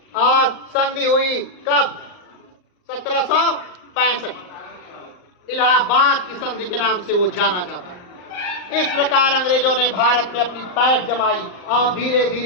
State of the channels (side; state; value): right; late; 39 ms